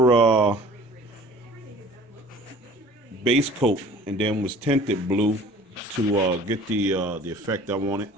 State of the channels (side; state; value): both; normal; correlation 0.47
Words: base coat, and then was tinted blue to get the effect I wanted.